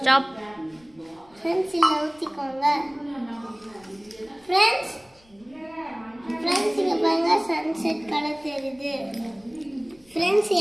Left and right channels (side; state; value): left; noise; rumble, 30 dB below the sound